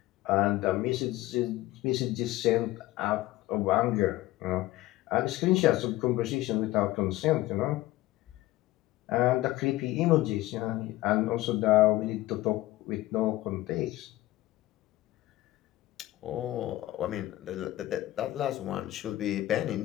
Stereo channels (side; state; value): right; quieter; 16.8 dB